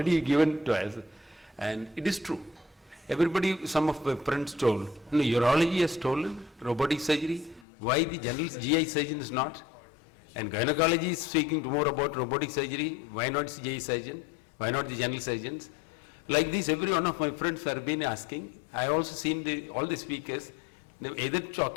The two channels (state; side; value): drops out; right; at 7.7 s